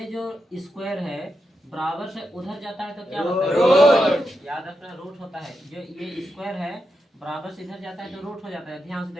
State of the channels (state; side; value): normal; both; correlation 0.86